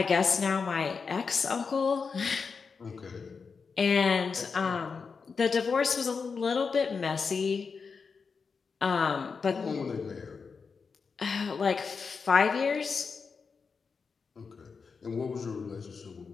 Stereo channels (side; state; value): right; quieter; 5.3 dB